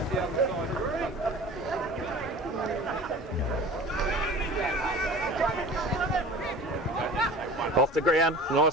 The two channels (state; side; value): normal; both; correlation 0.40